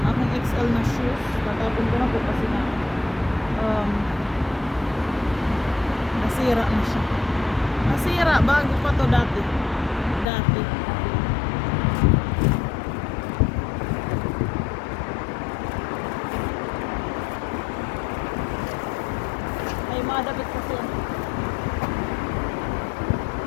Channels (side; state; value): right; drops out; at 10.2 s